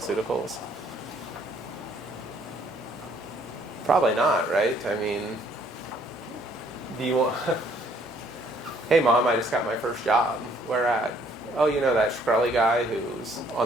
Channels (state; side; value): normal; both; correlation 0.63